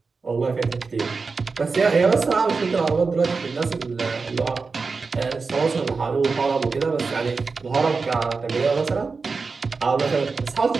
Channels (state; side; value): quieter; left; 4.5 dB